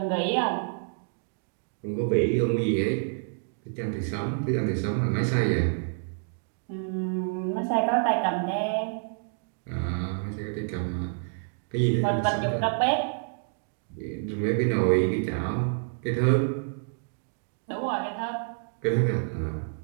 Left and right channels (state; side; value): silent; left; digital silence